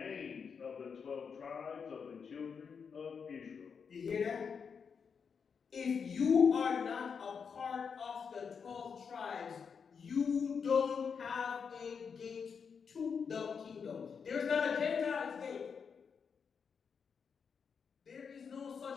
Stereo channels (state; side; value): quieter; right; 6.2 dB